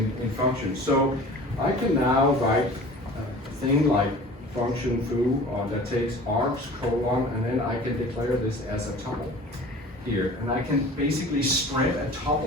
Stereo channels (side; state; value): both; normal; correlation 0.42